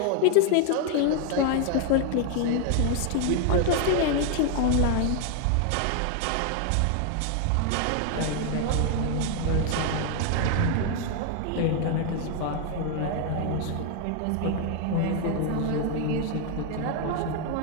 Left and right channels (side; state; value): both; different; correlation 0.00